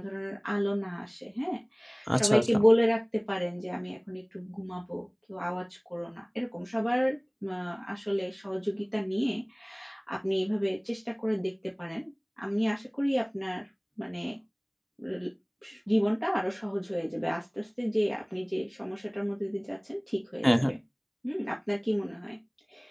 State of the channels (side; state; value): both; identical; correlation 1.00